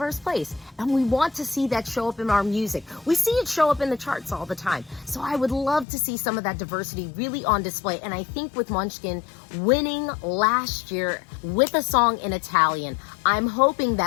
place, and we want to see that show up in our music. We see it show up in the charts all the time. So I would love to see some of that diversity really on display. And I think with Måneskin winning last year with a song in Italian, I'm hoping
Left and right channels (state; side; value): drops out; right; at 5.9 s